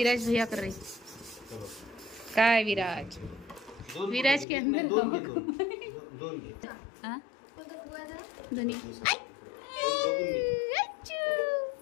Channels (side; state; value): right; drops out; at 4.5 s